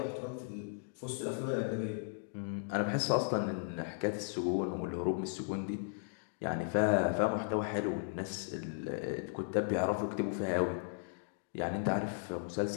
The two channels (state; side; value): silent; right; digital silence